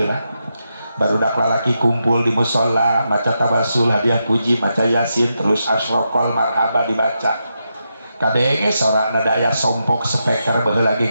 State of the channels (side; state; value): both; inverted; correlation -0.85